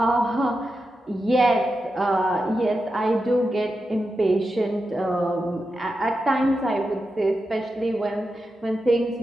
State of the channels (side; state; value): both; normal; correlation 0.89